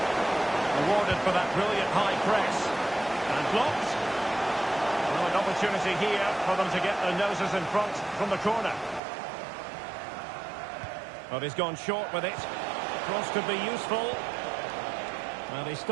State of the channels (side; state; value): left; drops out; at 9.0 s